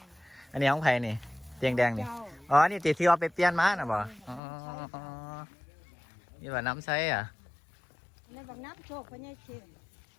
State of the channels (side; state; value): right; drops out; at 4.4 s